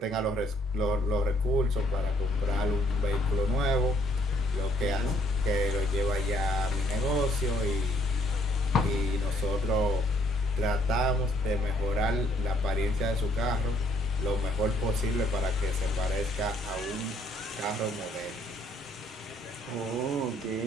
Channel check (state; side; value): normal; both; correlation 0.65